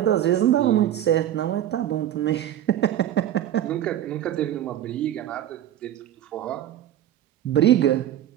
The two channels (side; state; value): left; quieter; 11.7 dB